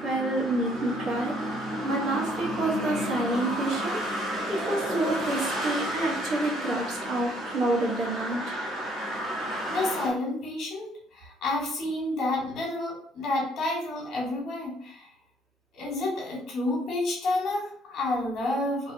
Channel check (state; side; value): normal; both; correlation 0.64